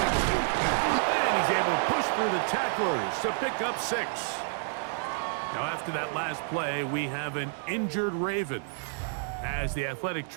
And he's able to push through the tacklers to pick up 6. Now, after that last play, we have an injured Raven. As the athletic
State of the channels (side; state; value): left; silent; digital silence